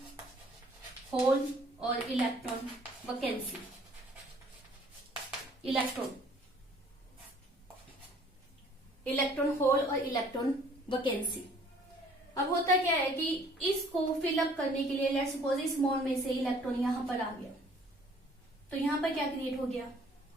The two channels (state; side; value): normal; both; correlation 0.57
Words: होल और इलेक्ट्रॉन वैकेंसी। इलेक्ट्रॉन होल और इलेक्ट्रॉन वैकेंसी। अब होता क्या है कि इसको फिलअप करने के लिए लेट्स सपोज इस बॉन्ड में से इलेक्ट्रॉन यहां पर आ गया, तो यहां पर क्या क्रिएट हो गया,